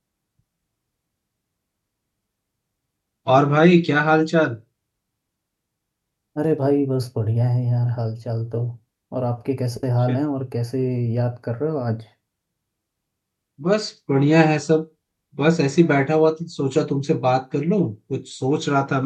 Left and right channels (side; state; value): both; identical; correlation 1.00